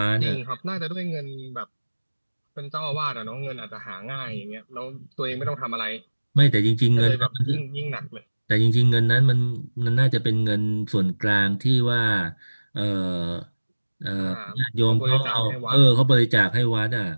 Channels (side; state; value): both; inverted; correlation -1.00